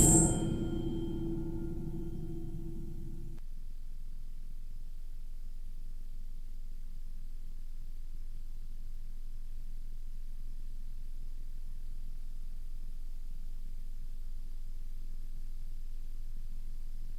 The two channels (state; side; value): identical; both; correlation 1.00